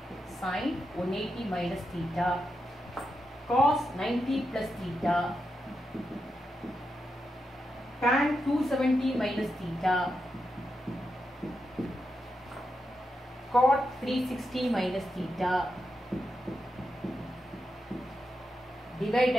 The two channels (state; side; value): normal; both; correlation 0.86